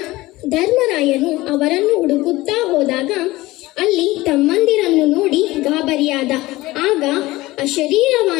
ಧರ್ಮರಾಯನು ಅವರನ್ನು ಹುಡುಕುತ್ತಾ ಹೋದಾಗ ಅಲ್ಲಿ ತಮ್ಮಂದಿರನ್ನು ನೋಡಿ ಗಾಬರಿಯಾದ. ಆಗ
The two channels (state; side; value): quieter; right; 18.9 dB